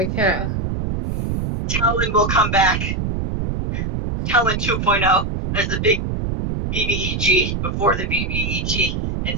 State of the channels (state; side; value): noise; right; rumble, 2 dB below the sound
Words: cat. Talon will come back. Talon 2.0 as the big BBEG before the BBEG,